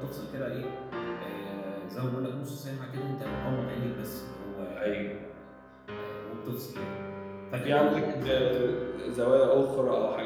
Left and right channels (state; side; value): identical; both; correlation 1.00